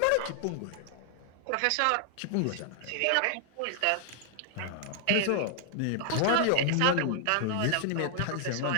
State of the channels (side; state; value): both; different; correlation 0.00